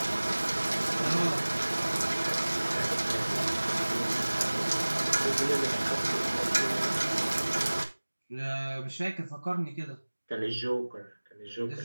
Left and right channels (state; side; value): inverted; both; correlation -1.00